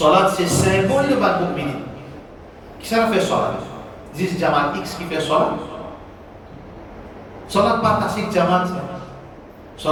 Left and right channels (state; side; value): identical; both; correlation 1.00